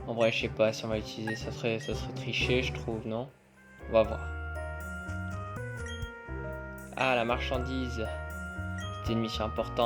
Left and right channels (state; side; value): identical; both; correlation 1.00